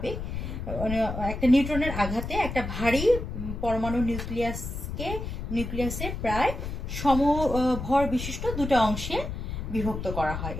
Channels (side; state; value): left; noise; rumble, 5 dB below the sound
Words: একটা নিউট্রনের আঘাতে একটা ভারী পরমাণু নিউক্লিয়াসে প্রায় সমভর বিশিষ্ট দুটো অংশে বিভক্ত করা হয়